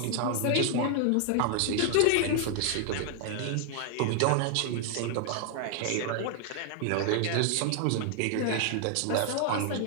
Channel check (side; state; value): both; different; correlation 0.00